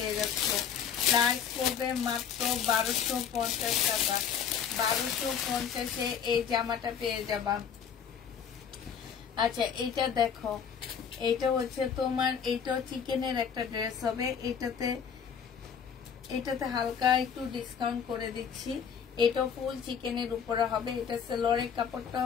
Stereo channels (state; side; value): quieter; right; 7.6 dB